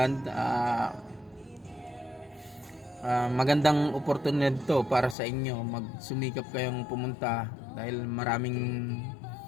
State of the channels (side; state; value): right; drops out; at 5.2 s